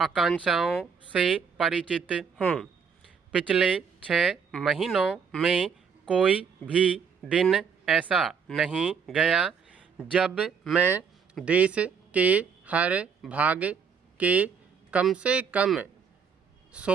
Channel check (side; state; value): left; quieter; 6.4 dB